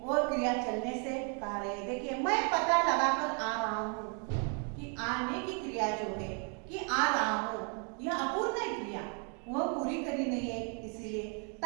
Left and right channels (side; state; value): left; quieter; 38.6 dB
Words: वो क्रिया चलने से कह रहे हैं। देखिए, मैं पता लगाकर आ रहा हूँ, कि आने की क्रिया जो है, कि आ रहा हूँ, यह अपूर्ण है क्रिया, वह पूरी करी नहीं है, इसीलिए